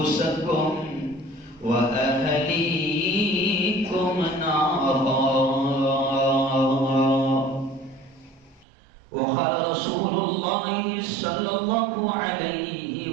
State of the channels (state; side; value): drops out; left; at 8.7 s